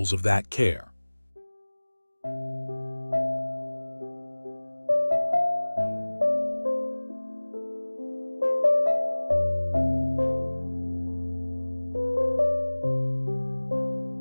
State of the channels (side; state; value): both; inverted; correlation -1.00